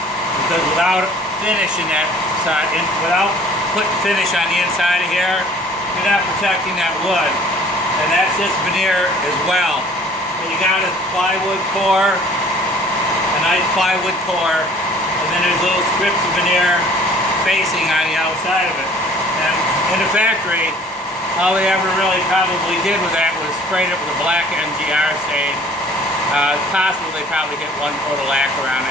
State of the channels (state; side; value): normal; both; correlation 0.53